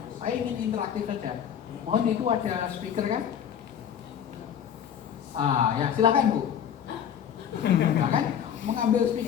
Saya ingin interaktif saja. Mohon itu ada speaker kan? Ya silakan Bu. Silakan mengambil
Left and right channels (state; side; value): quieter; right; 8.8 dB